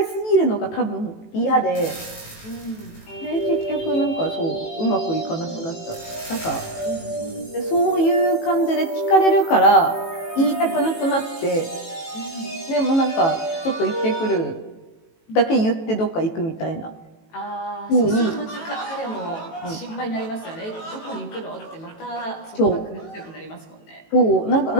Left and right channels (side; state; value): right; late; 18 ms